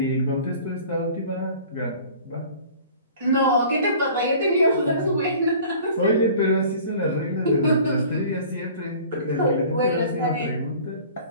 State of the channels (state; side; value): inverted; both; correlation -0.46